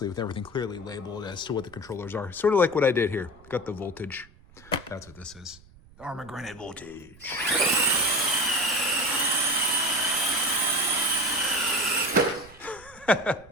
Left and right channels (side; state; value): right; noise; rumble, 24 dB below the sound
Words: with everything clearly labeled as to what the controllers are. Sort of like what I did here. Got the voltage. That's what this is. Armor-granted voltage.